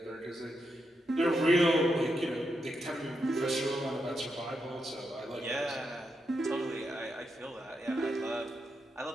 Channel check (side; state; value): both; normal; correlation 0.83